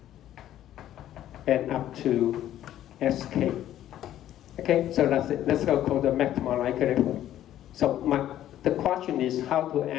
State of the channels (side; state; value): right; quieter; 12.2 dB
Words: and up to sk. Okay, so that's it. Let's go call the maximum likelihood. So the question is how to